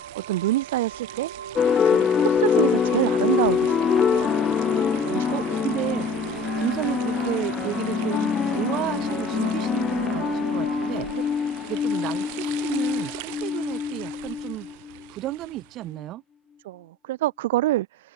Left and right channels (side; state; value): both; normal; correlation 0.46